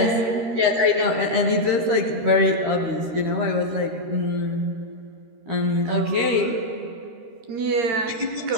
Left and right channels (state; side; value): late; left; 13 ms